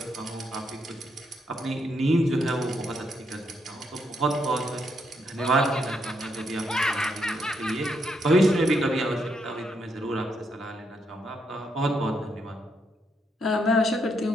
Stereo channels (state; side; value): normal; both; correlation 0.77